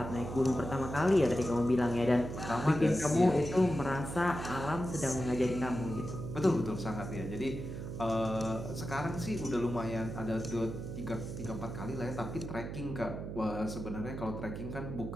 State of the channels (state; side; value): noise; right; hum, 7 dB below the sound